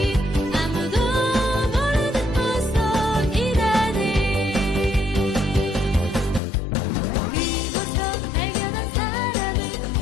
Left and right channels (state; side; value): drops out; right; at 6.4 s